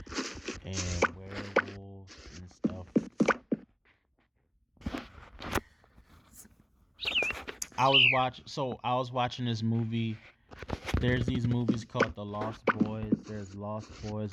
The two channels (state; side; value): identical; both; correlation 1.00